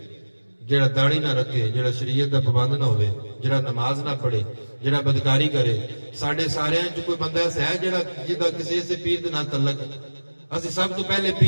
جڑا داڑھی نہ رکھے، جڑا شریعت دا پابند نہ ہوے، جڑا نماز نہ پڑھے، جڑا بدکاری کرے. ساڈے سارے چ کوئی بندہ ایسا ہے جڑا جدا کسی سے پیر دے نال تعلق ہے؟ اسی سب تو پہلے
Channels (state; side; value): inverted; both; correlation -1.00